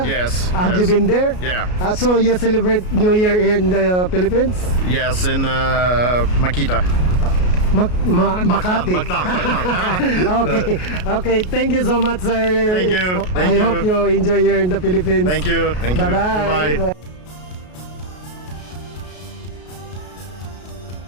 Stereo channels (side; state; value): right; late; 33 ms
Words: Yes. Have yes. you been there? Yeah. So you celebrate New Year here in the Philippines? Yes, in Makita. Makati. Mactan. Okay. Okay. Thank you so much, sir. Thank you. I hope you enjoy here in the Philippines. Thank you. Thank you. Bye-bye. Bye.